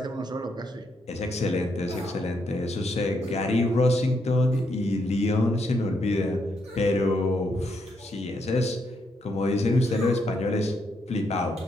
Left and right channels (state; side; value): normal; both; correlation 0.77